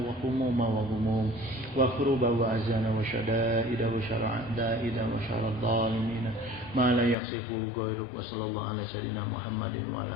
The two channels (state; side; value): drops out; right; at 7.2 s